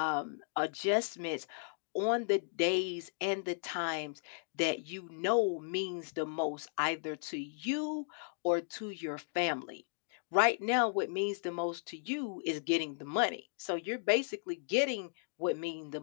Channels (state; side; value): silent; right; digital silence